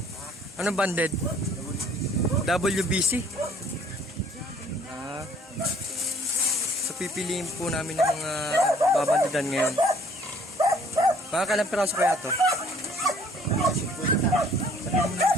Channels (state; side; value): normal; both; correlation 0.58